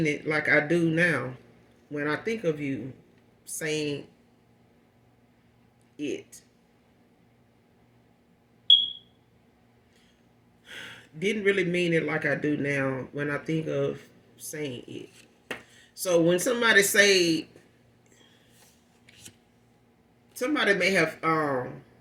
it like I do now. When I think of you saying it. Didn't really mean it like I do now when I think of saying it. So when somebody may have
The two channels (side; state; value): both; identical; correlation 1.00